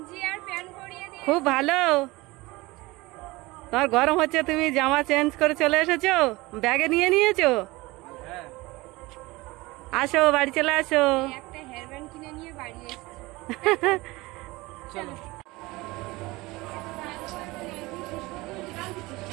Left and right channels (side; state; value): left; quieter; 21.5 dB